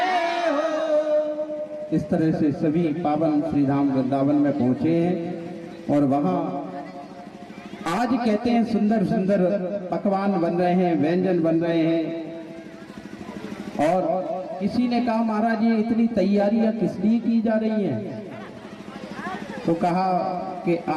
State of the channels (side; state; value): both; identical; correlation 1.00